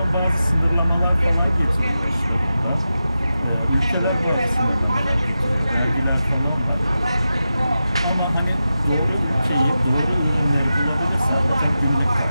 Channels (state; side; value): inverted; both; correlation -0.91